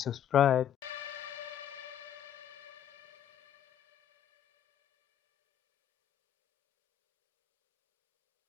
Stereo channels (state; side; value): quieter; right; 10.2 dB